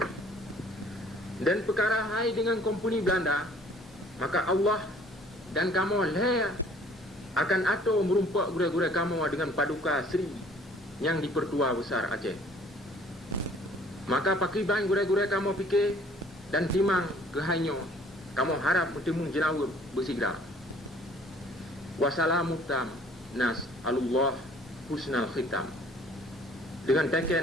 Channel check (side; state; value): both; normal; correlation 0.56